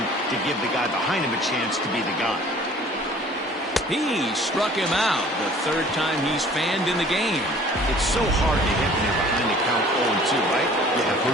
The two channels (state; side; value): normal; both; correlation 0.51